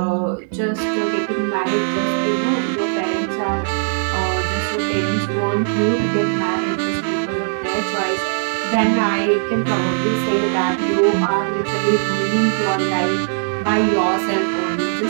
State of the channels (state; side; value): silent; left; digital silence